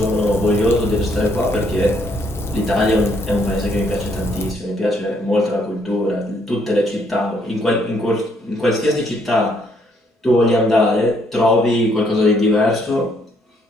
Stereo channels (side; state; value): both; normal; correlation 0.69